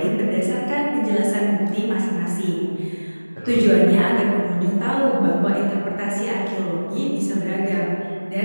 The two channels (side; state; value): both; inverted; correlation -1.00